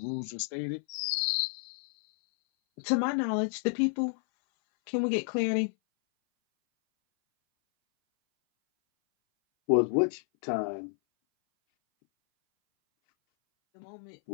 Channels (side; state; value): right; silent; 58 dB below the other